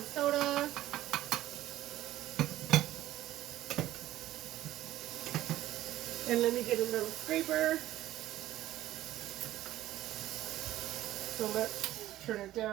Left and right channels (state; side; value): quieter; left; 14.4 dB